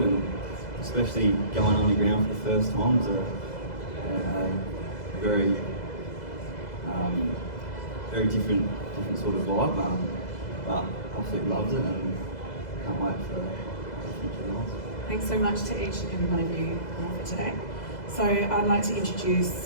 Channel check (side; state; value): right; late; 2.0 ms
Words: and especially going underground for the first time is a very very different sort of vibe, but absolutely loves it and can't wait for the future lives. Thanks so much to each and every one of you for today. So I'd like to